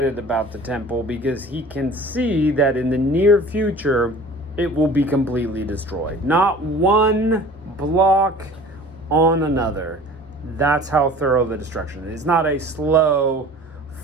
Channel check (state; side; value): normal; both; correlation 0.44